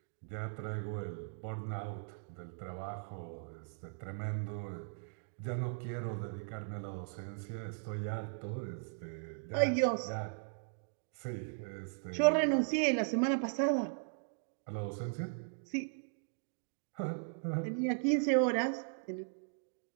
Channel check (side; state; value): left; silent; digital silence